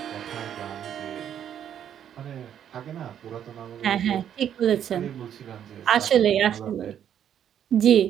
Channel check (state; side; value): quieter; left; 9.5 dB